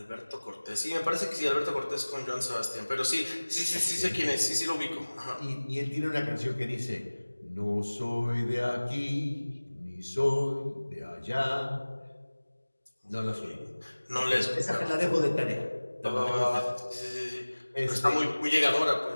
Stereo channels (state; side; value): inverted; both; correlation -1.00